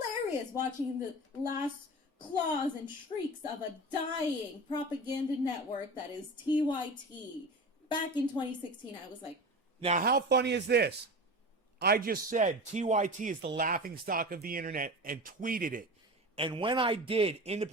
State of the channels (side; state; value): both; normal; correlation 0.31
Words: watching the last claws and shrieks of a dying propaganda network that is TYT. Back in 2016, I was like... Now, how funny is this? I just said TYT is the laughing stock of the internet and tweeted it. And when I did,